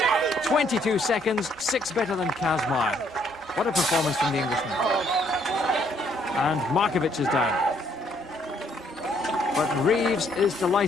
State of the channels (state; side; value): normal; both; correlation 0.67